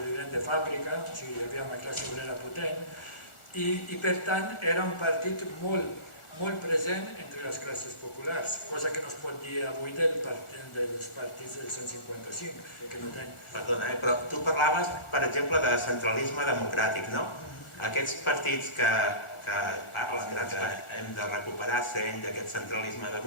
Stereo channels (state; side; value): late; right; 1.4 ms